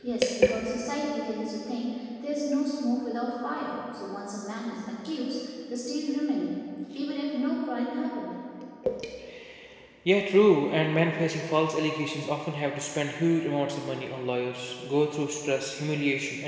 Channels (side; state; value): both; identical; correlation 1.00